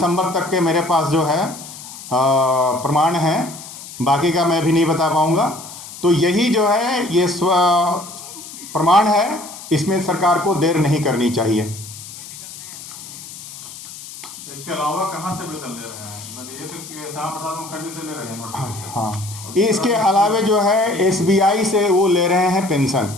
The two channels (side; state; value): left; noise; hiss, 14 dB below the sound